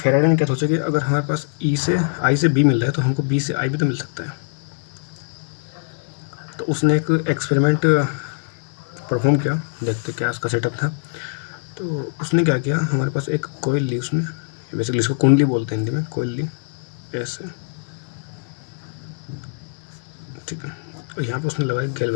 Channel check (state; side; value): silent; right; digital silence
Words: ने क्या सोचा कि अगर हमारे पास ई से आई से बी मिल रहा है तो हमको बी से आई भी तो मिल सकता है। तो उसने एक एक्सपेरिमेंट परफॉर्म किया, देखते क्या उसका सेटअप था। तो उसने क्या किया, हमारे पास एक कोयल ली उसने, बेसिकली इसको कुंडली बोलते हैं हिंदी में, कोयल ली ऐसे, ठीक है। और यहाँ पे उसने लगाया